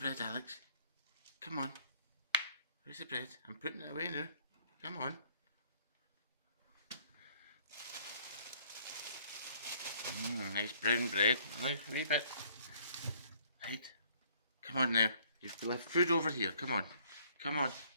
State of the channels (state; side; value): inverted; both; correlation -0.61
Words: Alex? Come on. Where's the bread? I'm putting it away now. Come on. Nice brown bread. Now a wee bit. Right. Come on now. You've left food over here. Come on. Come on.